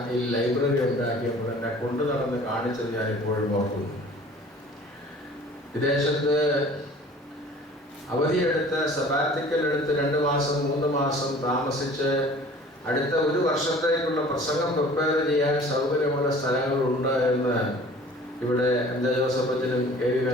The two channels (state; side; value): normal; both; correlation 0.48